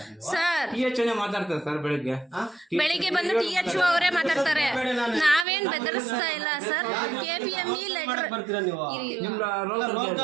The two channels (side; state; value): left; drops out; at 5.5 s